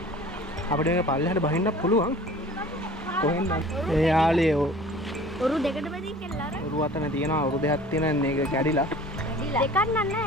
අපිට මේක පල්ලෙහාට බහින්න පුළුවන්. කොහෙන්ද? ඒ යාළුවෝ ඔරු දෙකට බෙදී කියලා අර. ඔරු අතන තියෙනවා. ඔරු දෙකක් තියෙන මේක කැඩිලා. දෙකක් නෑ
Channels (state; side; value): normal; both; correlation 0.46